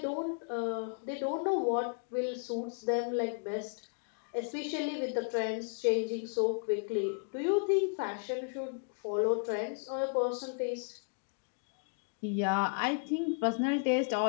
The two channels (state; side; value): quieter; right; 39.3 dB